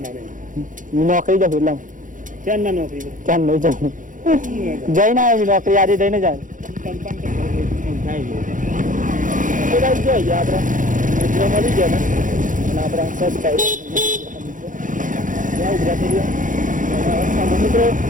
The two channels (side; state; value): left; late; 0.38 ms